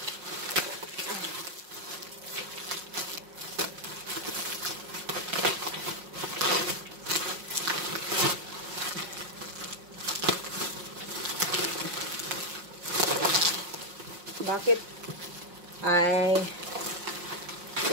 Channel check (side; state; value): left; late; 5.6 ms